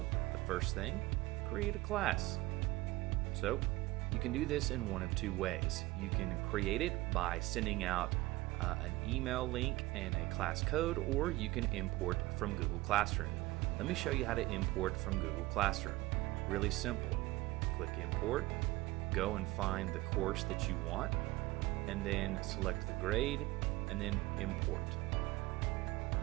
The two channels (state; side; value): quieter; left; 19.5 dB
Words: the first thing, create a class. So you can do this in one of two ways. You can create it by sending out an email link and a class code, or you can import from Google Classroom. Let me show you how to import from Google Classroom. Really simple. Click import, go and find the course that you want, and then select the grade and then import.